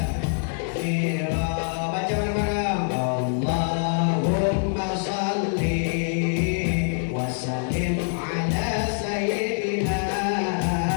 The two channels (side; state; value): right; silent; digital silence